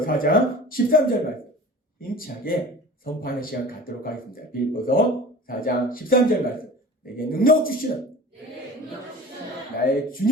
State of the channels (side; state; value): both; normal; correlation 0.40